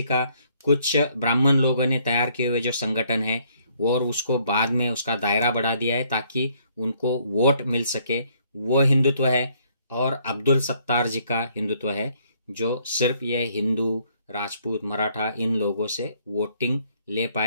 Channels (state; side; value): inverted; both; correlation -0.67